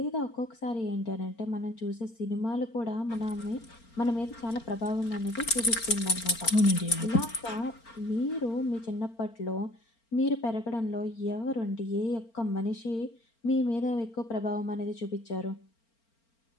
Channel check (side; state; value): right; late; 4.4 ms